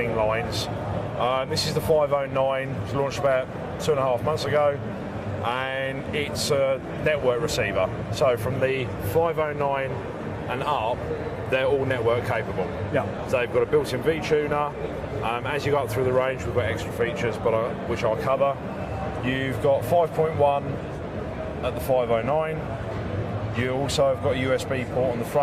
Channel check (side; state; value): both; identical; correlation 1.00